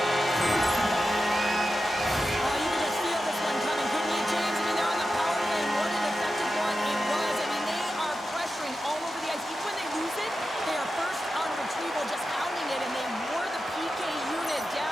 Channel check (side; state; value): both; normal; correlation 0.91